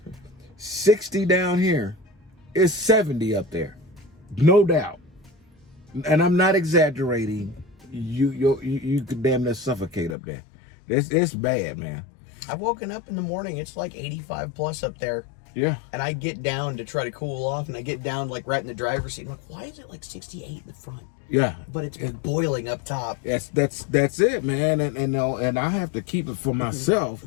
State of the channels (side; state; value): right; drops out; at 10.2 s